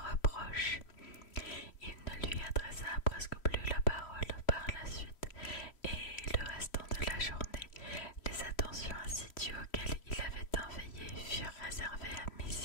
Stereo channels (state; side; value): late; right; 3.1 ms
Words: reproches. Il ne lui adressa presque plus la parole par la suite, et le restant de la journée, les attentions assidues auxquelles il avait tant veillé furent réservées à